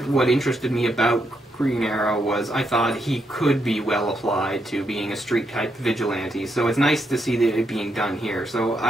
what interested me about Green Arrow was I thought he could be well applied to being a street-type vigilante, so it's nice to see that it being done here. So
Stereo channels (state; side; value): normal; both; correlation 0.80